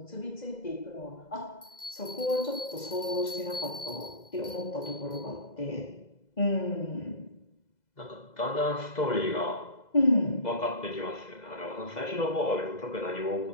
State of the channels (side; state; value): right; late; 2.0 ms